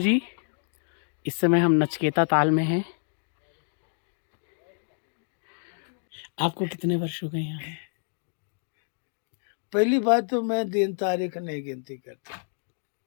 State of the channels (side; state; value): right; silent; digital silence